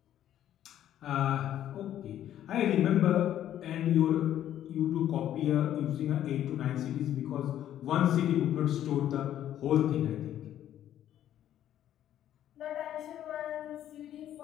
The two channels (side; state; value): right; quieter; 11.5 dB